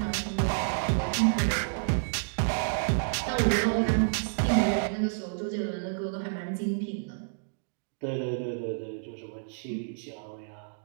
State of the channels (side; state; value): left; silent; digital silence